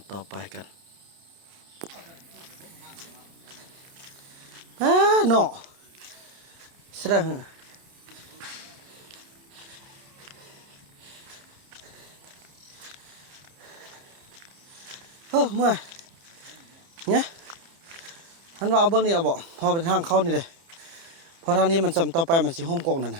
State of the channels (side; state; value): left; late; 30 ms